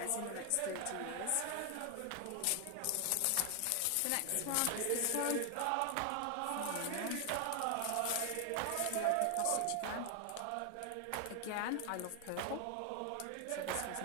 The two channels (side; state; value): both; different; correlation 0.00